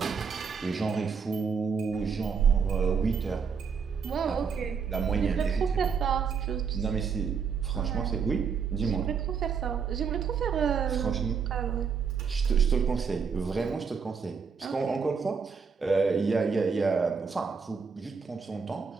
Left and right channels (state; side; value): quieter; left; 6.0 dB